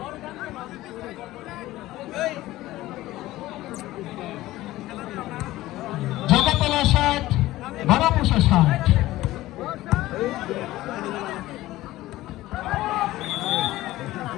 জগতলা 60, বারাপোষা 60।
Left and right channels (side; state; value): right; quieter; 16.6 dB